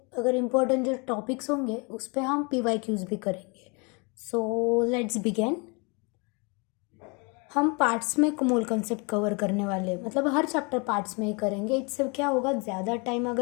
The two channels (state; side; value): quieter; right; 31.3 dB